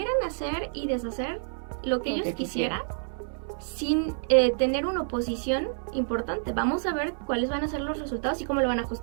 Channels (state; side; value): silent; left; 59 dB below the other